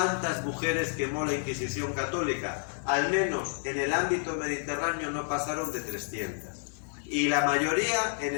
mujeres quemó la Inquisición católica? Al menos en el ámbito mediterráneo no pasaron de 300. Y la mayoría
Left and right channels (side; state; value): right; silent; 58 dB below the other